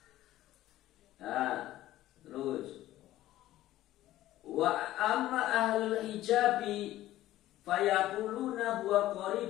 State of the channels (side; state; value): right; quieter; 14.7 dB